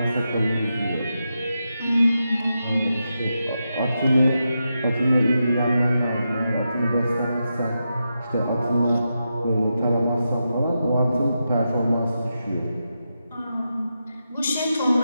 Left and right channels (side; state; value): both; inverted; correlation -0.87